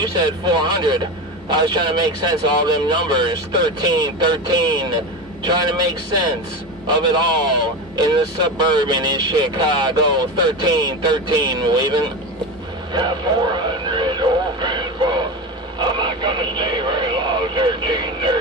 said 400. I was trying to make sense of all them numbers. 1313. Trying to make sense of it all in the suburban in Chicago. 1313, waving. Yeah, 400, old Grandpa. I'm not going to stay very long,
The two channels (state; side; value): normal; both; correlation 0.22